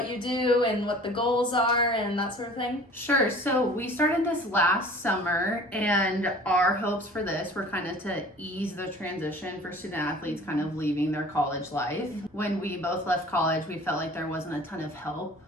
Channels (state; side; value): normal; both; correlation 0.46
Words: you do and what the goals are and that sort of thing? Sure. So we started this last summer, and our hopes for this were kind of to ease the transition for student athletes kind of leaving their college life. When we both left college, we felt like there wasn't a ton of help